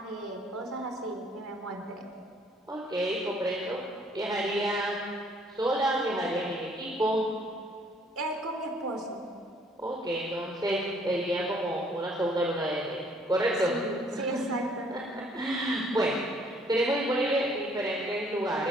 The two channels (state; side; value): normal; both; correlation 0.62